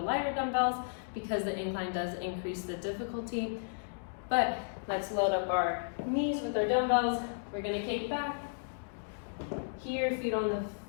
dumbbells because the incline does increase the difficulty. But let's load up our knees with our dumbbells. We're gonna kick back. Here, feet on the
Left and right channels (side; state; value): right; silent; digital silence